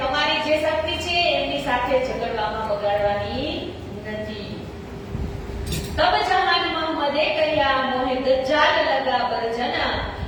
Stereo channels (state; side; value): identical; both; correlation 1.00